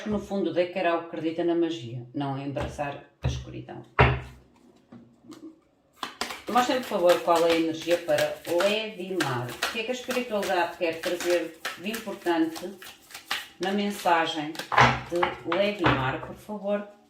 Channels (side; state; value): both; identical; correlation 1.00